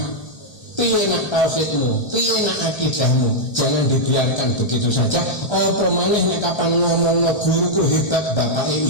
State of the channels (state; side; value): late; right; 1.3 ms